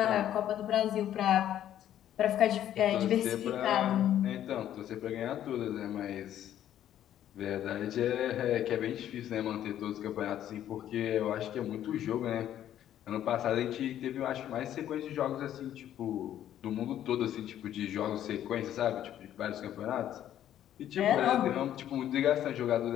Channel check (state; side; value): quieter; right; 11.3 dB